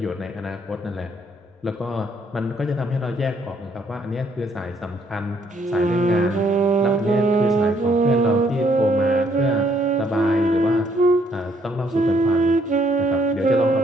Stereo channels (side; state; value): both; normal; correlation 0.68